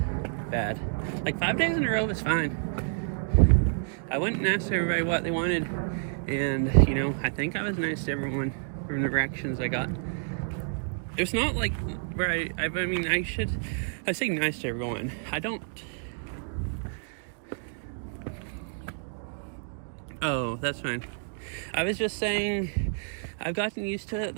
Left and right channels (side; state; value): left; silent; digital silence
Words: bad. Like, 5 days in a row is fine. I went and asked everybody what they wanted, and, you know, I think I was nice to everyone from the reactions I got. It's not like where I mean, I say nice to everyone. I don't. Oh, that's fine. I was just saying I've gotten used to it.